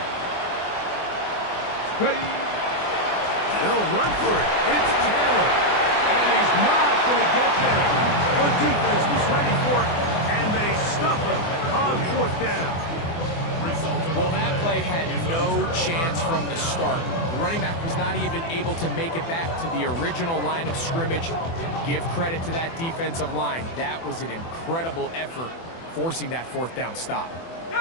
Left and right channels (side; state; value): right; late; 24 ms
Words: Ready. They'll run for it. It's Taylor. And he's not going to get there. The defense was ready for it, and they stuff him on fourth down. Well, that play had no chance from the start. The running back was not even able to make it back to the original line of scrimmage. Give credit to that defensive line. That was an incredible effort, forcing that fourth down stop.